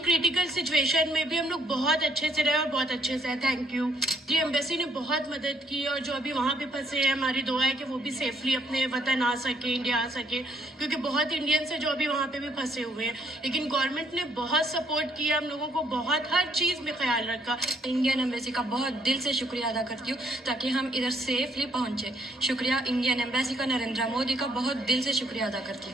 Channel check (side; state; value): both; normal; correlation 0.67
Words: सिचुएशन में भी हम लोग बहुत अच्छे से रहे और बहुत अच्छे से। थैंक यू जी, एम्बेसी ने बहुत मदद की और जो अभी वहाँ पे फंसे हैं, हमारी दुआ है कि वो भी सेफली अपने वतन आ सके, इंडिया आ सके, क्योंकि बहुत इंडियंस है जो अभी वहाँ पे भी फंसे हुए हैं। लेकिन गवर्नमेंट ने बहुत सपोर्ट किया हम लोगों को, बहुत हर चीज में ख्याल रखा। इंडियन एम्बेसी का बहुत दिल से शुक्रिया अदा करती हूँ ताकि हम इधर सेफली पहुंचे। शुक्रिया इंडियन एम्बेसी का, नरेंद्र मोदी का बहुत दिल से शुक्रिया अदा करती